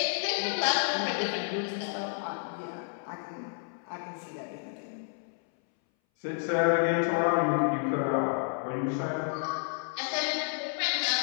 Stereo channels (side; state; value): right; silent; 57 dB below the other